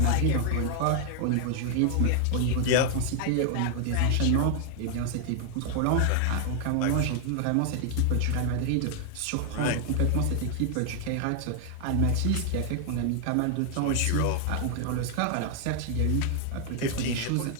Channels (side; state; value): both; different; correlation 0.00